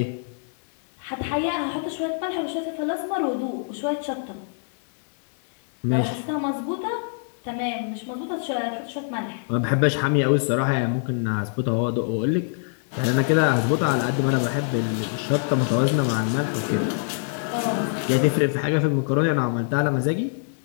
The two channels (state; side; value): silent; right; 57 dB below the other